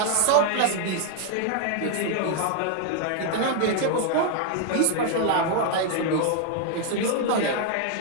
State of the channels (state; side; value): different; both; correlation 0.00